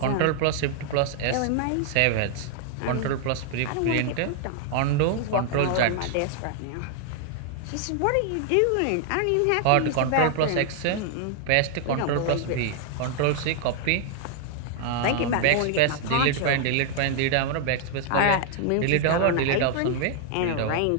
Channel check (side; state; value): both; different; correlation 0.00